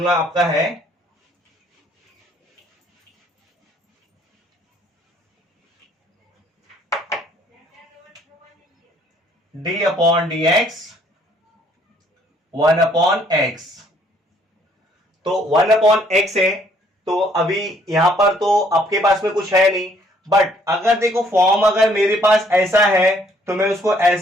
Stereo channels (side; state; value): both; normal; correlation 0.64